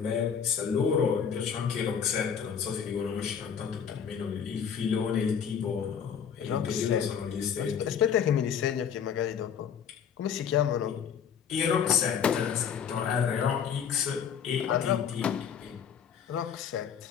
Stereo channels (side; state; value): right; quieter; 7.6 dB